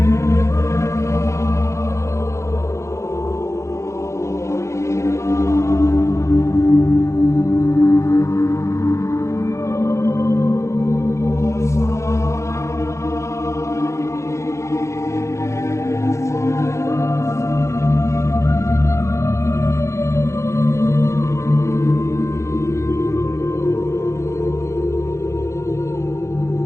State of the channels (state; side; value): late; right; 0.14 ms